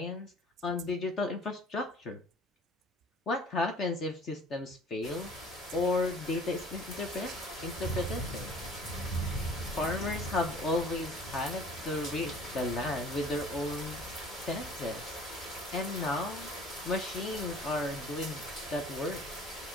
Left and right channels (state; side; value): normal; both; correlation 0.50